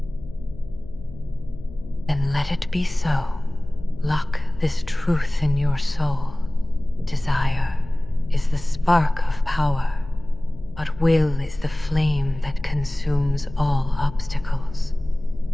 Then let it be so. Lock this truth in your soul. Desire is the spark of power, but will is the flame that consumes all obstacles.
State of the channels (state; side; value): noise; left; hum, 17 dB below the sound